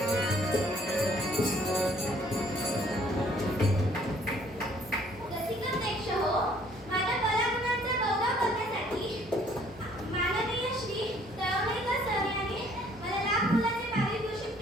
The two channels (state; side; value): normal; both; correlation 0.60